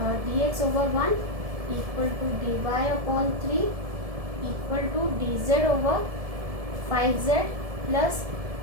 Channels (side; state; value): left; late; 1.7 ms